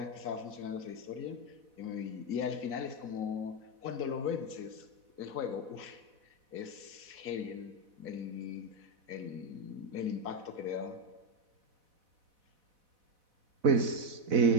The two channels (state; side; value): late; left; 4.1 ms